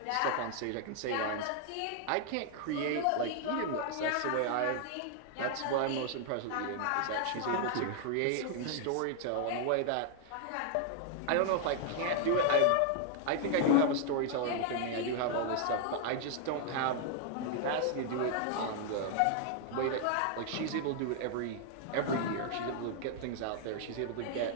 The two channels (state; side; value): different; both; correlation 0.00